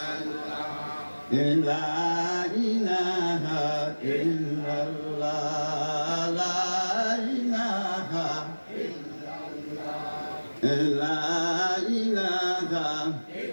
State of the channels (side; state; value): both; inverted; correlation -1.00